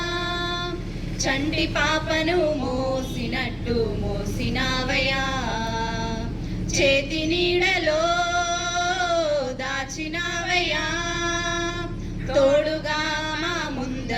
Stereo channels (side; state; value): both; identical; correlation 1.00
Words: చంటి పాపను మోసినట్టు మోసినావయ్యా. చేతి నీడలో దాచినావయ్యా. తోడుగా మా